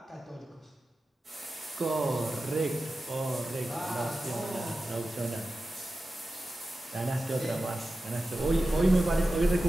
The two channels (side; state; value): both; normal; correlation 0.93